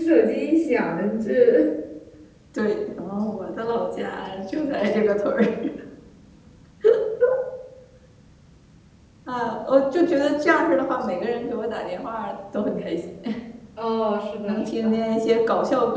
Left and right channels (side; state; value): both; identical; correlation 1.00